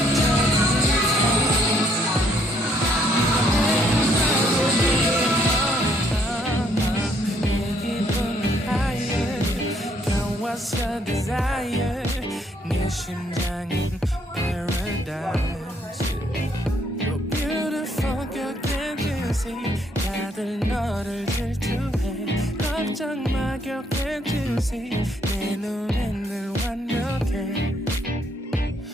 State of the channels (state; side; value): normal; both; correlation 0.68